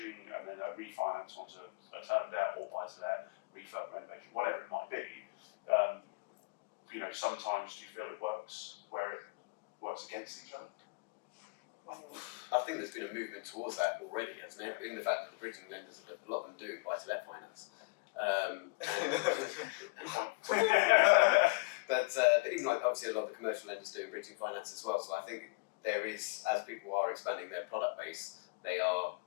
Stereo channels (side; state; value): right; quieter; 28.1 dB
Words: and then a refinance onto a term debt or buy-to-let, refurb renovation, whatever it might be. Sometimes do you feel it works where it works against each other? I think there's been a movement towards that already, hasn't it? In the fact that the bridging lenders, a lot of them do buy-to-let finance. But even like obviously a lot of the commercial lenders do bridging finance as well. So I think there is, as people are expanding their product base, they are